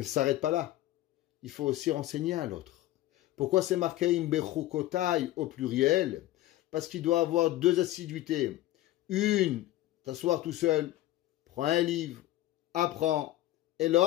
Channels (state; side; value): quieter; right; 15.4 dB